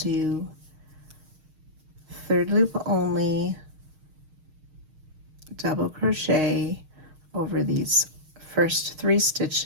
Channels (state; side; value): late; left; 6.4 ms